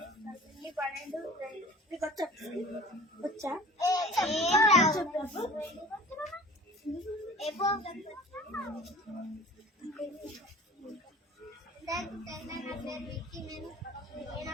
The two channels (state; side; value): normal; both; correlation 0.44